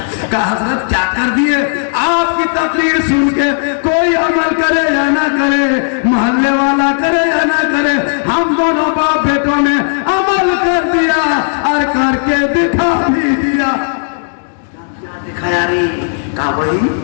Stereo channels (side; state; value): right; silent; 66 dB below the other